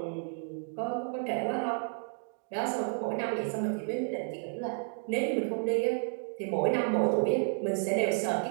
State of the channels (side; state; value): left; silent; 57 dB below the other